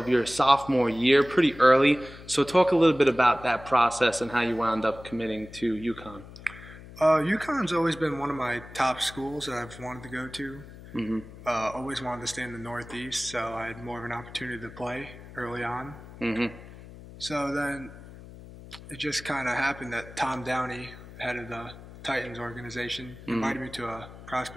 sophomore year, pretty early. So talk a little bit about that process and how you wound up committing to UConn. UConn's always been one of my top schools that I've wanted to go to. Always wanted to stay in the Northeast, so I had more of an opportunity to play early on. So then it just kind of happened that Tom Downey, head of the Titans organization, invited me to a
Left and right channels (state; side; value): noise; left; hum, 17 dB below the sound